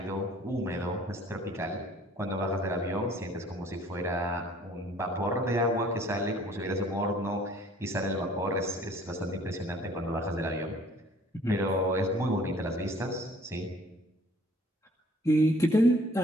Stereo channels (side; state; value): both; normal; correlation 0.55